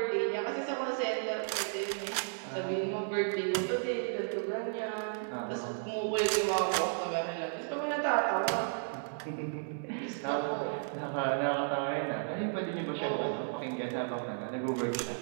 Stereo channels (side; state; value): left; silent; digital silence